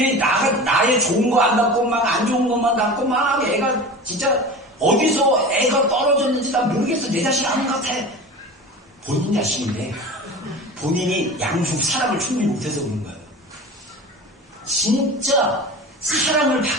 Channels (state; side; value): normal; both; correlation 0.34